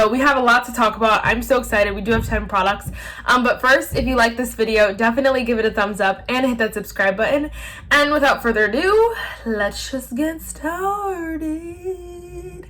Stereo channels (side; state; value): both; identical; correlation 1.00